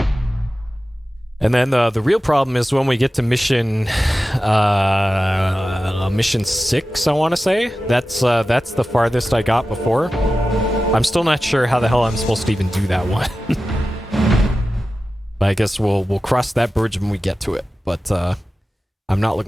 And then the real problem is when we get to mission 6, I want to say. That's the farthest I got before. I'm still not sure how the hell I'm supposed to even do that one. But I guess we'll cross that bridge when we get to it. But I'm not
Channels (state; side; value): normal; both; correlation 0.94